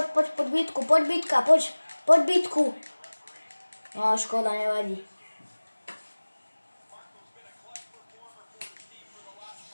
bitku, poď bitka, poď bitku. No škoda, nevadí.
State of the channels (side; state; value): both; inverted; correlation -1.00